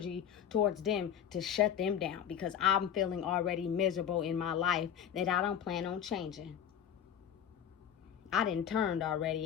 towards them to shut them down, because I'm feeling already miserable in my life that I don't plan on changing. I done turned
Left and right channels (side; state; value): right; quieter; 8.9 dB